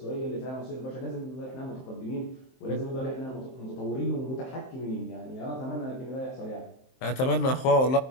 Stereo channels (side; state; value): right; late; 23 ms